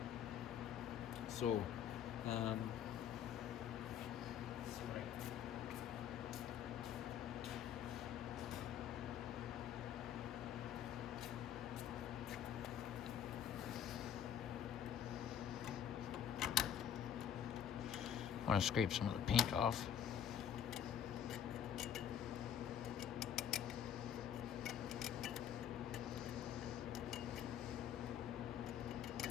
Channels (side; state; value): right; quieter; 9.4 dB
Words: So, I want to scrape some of the paint off.